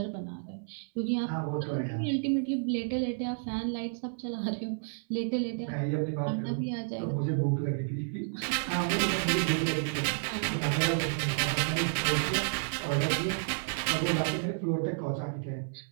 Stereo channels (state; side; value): silent; left; 57 dB below the other